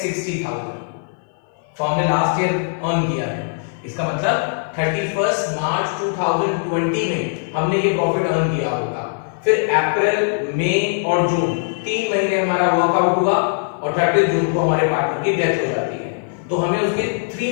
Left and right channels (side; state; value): right; silent; 58 dB below the other